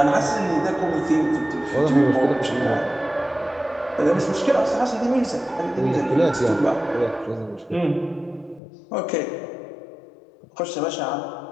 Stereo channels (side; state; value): right; drops out; at 8.6 s